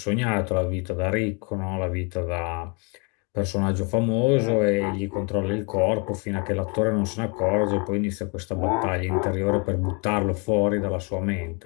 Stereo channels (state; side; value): quieter; right; 33.6 dB